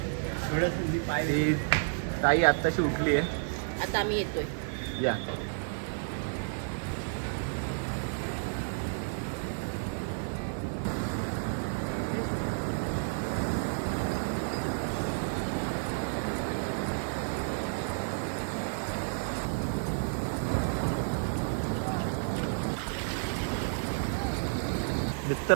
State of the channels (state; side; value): silent; left; 57 dB below the other